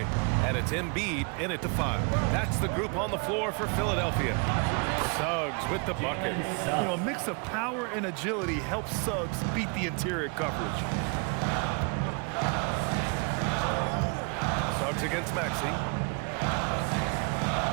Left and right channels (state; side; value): quieter; left; 34.2 dB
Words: And it's Embiid in it to 5. That's the group on the floor for Philadelphia. Suggs with the bucket. You know, a mix of power and agility helps Suggs beat the interior coverage. Suggs against Maxey.